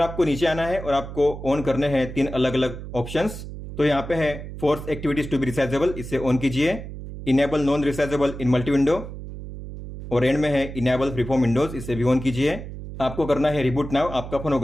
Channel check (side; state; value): right; noise; hum, 10 dB below the sound